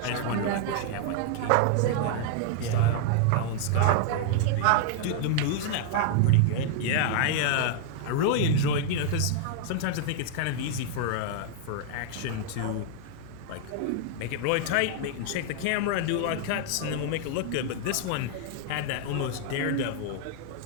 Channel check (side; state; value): both; different; correlation -0.01